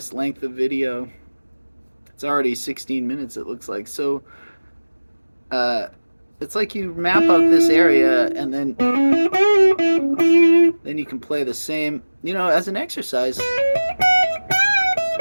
length of video. It's already 16 minutes, it looks like. So it's like you map out this area, and then you can play the same, you know, as an exercise.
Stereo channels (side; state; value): both; inverted; correlation -1.00